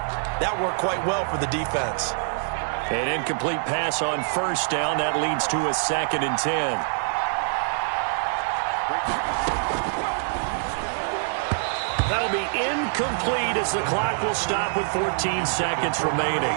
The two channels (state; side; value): silent; left; digital silence